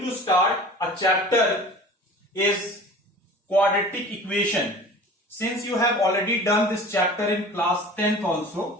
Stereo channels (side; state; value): both; normal; correlation 0.41